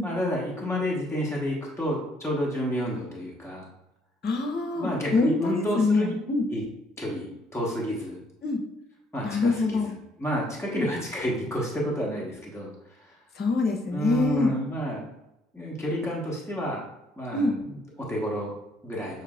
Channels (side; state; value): both; normal; correlation 0.68